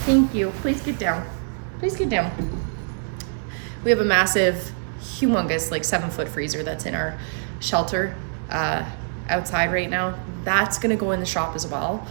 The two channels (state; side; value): silent; left; digital silence